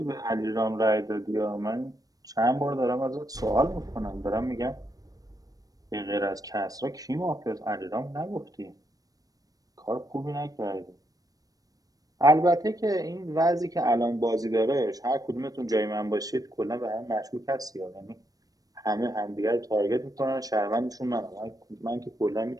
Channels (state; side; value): late; left; 0.18 ms